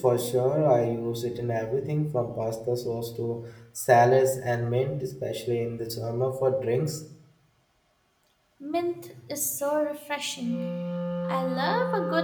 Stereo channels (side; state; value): both; identical; correlation 1.00